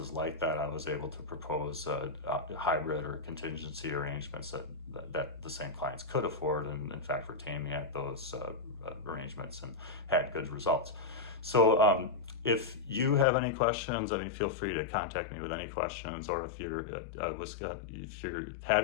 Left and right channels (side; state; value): right; drops out; at 13.2 s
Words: like that, I was able to propose hybrid or contingency arrangements that the same clients could afford, and in fact retain me at those arrangements and had good results. So if you have any questions, feel free to contact me with any questions, or if you're